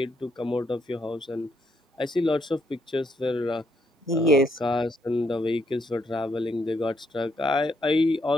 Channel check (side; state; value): both; normal; correlation 0.75